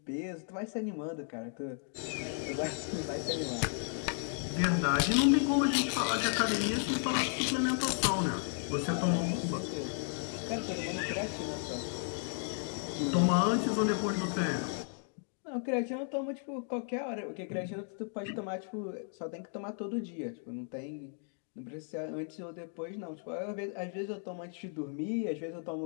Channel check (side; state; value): right; silent; 55 dB below the other